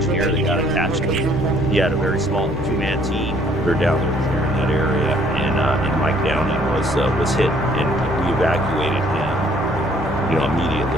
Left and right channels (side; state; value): both; normal; correlation 0.61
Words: that got attached to him. He had a very small 2-man team. We were down there in that area, and Mike Downing was hit, and we evacuated him,